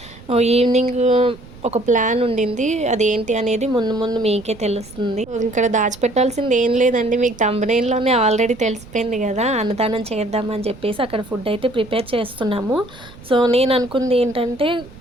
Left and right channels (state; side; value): noise; right; rumble, 19 dB below the sound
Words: ఈవినింగ్ ఒక ప్లాన్ ఉండింది, అదేంటి అనేది ముందు మీకే తెలుస్తుంది. ఇక్కడ దాచిపెట్టాల్సింది ఏం లేదండి, మీకు థంబ్నెయిల్లోనే ఆల్రెడీ తెలిసిపోయింది కదా. అన్నదానం చేద్దామని చెప్పేసి అక్కడ ఫుడ్ అయితే ప్రిపేర్ చేస్తున్నాము. సో నేను అనుకుంది ఏంటంటే,